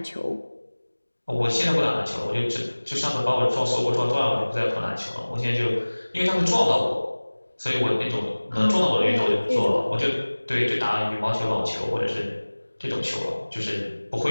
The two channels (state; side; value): inverted; both; correlation -1.00